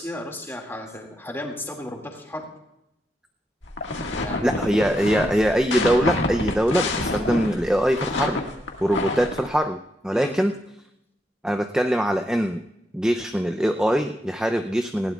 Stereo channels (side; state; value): both; normal; correlation 0.82